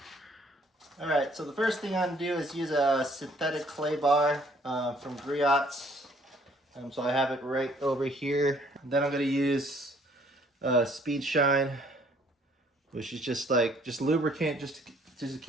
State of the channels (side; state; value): both; normal; correlation 0.61